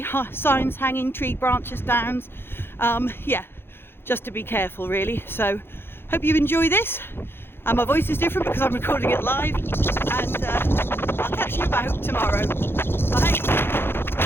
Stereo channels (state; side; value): late; right; 0.11 ms